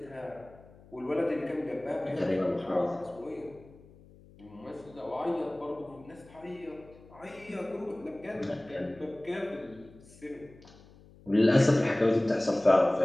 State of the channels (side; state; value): left; noise; hum, 23 dB below the sound